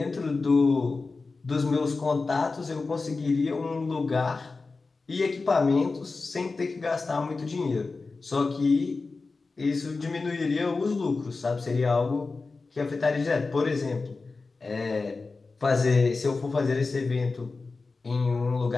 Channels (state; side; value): quieter; right; 4.0 dB